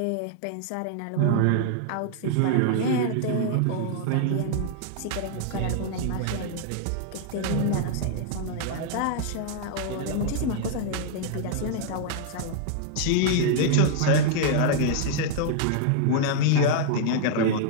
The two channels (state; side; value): different; both; correlation 0.00